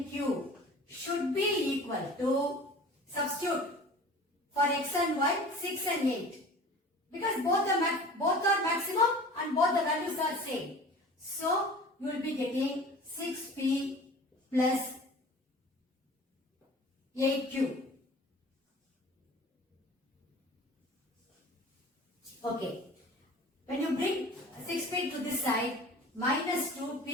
should be equal to, substitute for x and y, 6 and 8. Because both are maximum and both the values are same. So, you will be getting 6p plus 8q. Okay. When you bring 6p to this side, minus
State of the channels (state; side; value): normal; both; correlation 0.42